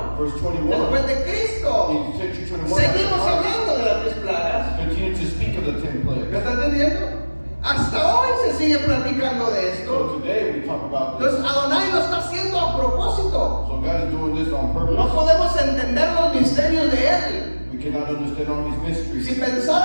verse 21, después de Cristo, in century 21, seguimos hablando de las 10 plagas. continue to speak of the 10 ¿Me plagues. está entendiendo? Hasta hoy se sigue platicando de So esto. today we talk about this. Entonces Adonai lo está haciendo a propósito. So God is doing this on purpose. No podemos entender los misterios de Él. We cannot understand all his mysteries. Si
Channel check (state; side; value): inverted; both; correlation -1.00